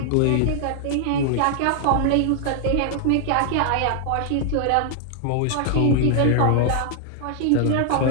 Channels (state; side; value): different; both; correlation -0.01